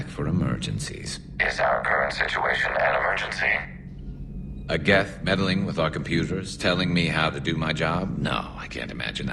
for emergencies. Is our current situation an emergency? A Geth meddling with our computers, telling me how to do my job? No, I can't imagine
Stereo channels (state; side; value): identical; both; correlation 1.00